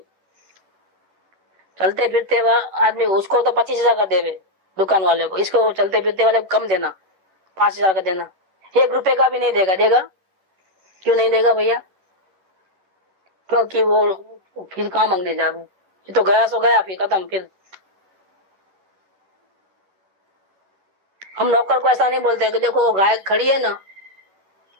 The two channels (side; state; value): left; late; 11 ms